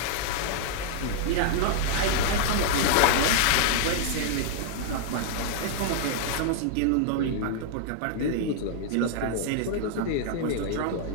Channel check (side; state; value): both; different; correlation -0.01